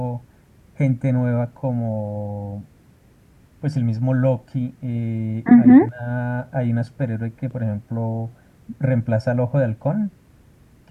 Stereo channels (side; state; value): both; identical; correlation 1.00